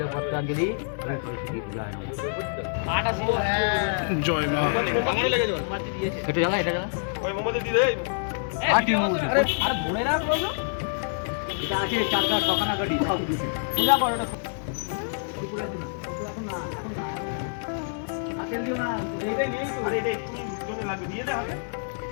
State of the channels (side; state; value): right; silent; digital silence